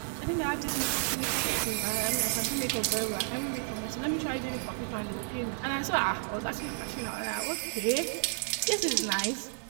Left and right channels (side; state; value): left; silent; 57 dB below the other